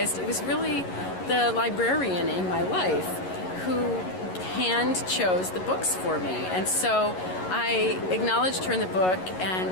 it was really the librarian in my life who hand chose the books for me. And so I acknowledged her in the book,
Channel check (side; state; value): right; late; 11 ms